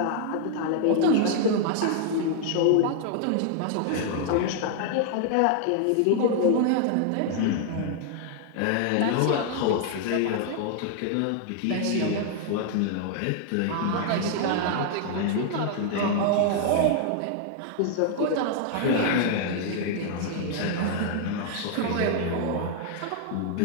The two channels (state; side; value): different; both; correlation 0.00